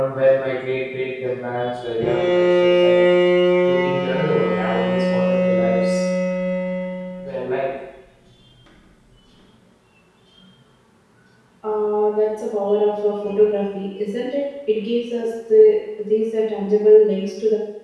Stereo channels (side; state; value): both; identical; correlation 1.00